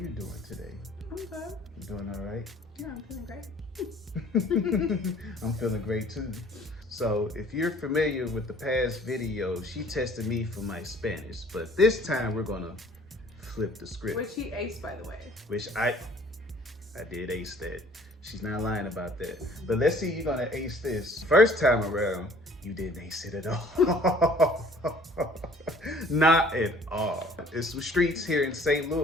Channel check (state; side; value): normal; both; correlation 0.54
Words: doing today? I'm good. You doing all right? Yeah, I'm feeling great. I'm feeling great too. So if you're familiar with the past video, she tested me for my Spanish, but this time we're gonna flip the script. Which he aced, by the way. Which I did ace that. She's not lying about that. But let's see, you're gonna ace this. First time around, you didn't ace it at all. Not at all. It's some streets here in St.